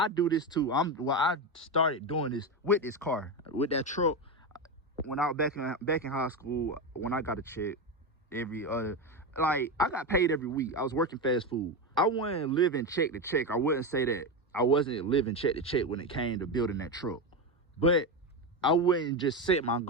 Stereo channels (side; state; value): both; normal; correlation 0.14